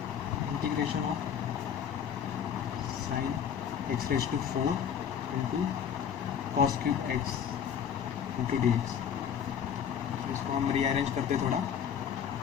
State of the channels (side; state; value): right; quieter; 8.2 dB